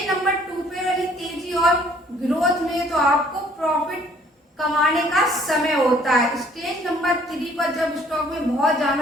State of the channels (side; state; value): both; normal; correlation 0.59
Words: नंबर 2 पे वाली तेजी और ग्रोथ में तो आपको प्रॉफिट कमाने का समय होता है। स्टेज नंबर 3 पर जब स्टॉक में बहुत